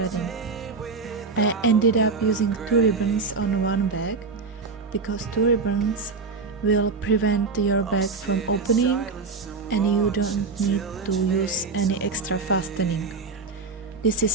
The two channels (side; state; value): left; quieter; 4.5 dB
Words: I ended up using 2 ribbons on one bag because 2 ribbons will prevent your bag from opening and you don't need to use any extra fastening. This